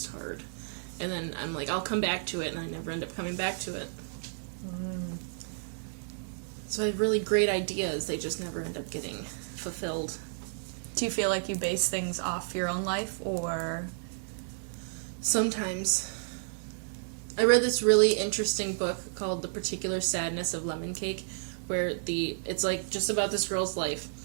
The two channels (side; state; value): left; silent; digital silence